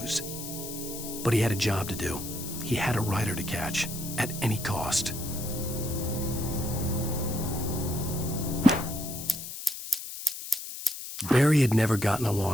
But he had a job to do. He had a rider to catch, at any cost. Barry had never gotten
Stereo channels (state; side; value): noise; left; hiss, 9 dB below the sound